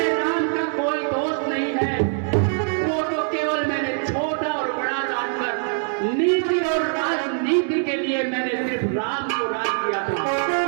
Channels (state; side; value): silent; left; 59 dB below the other